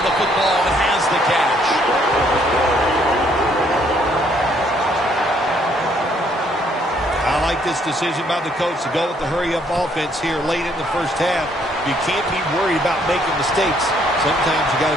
the football and has the catch. I like this decision by the coach to go with the hurry-up offense here late in the first half. You can't be worried about making mistakes. Sometimes you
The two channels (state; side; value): normal; both; correlation 0.67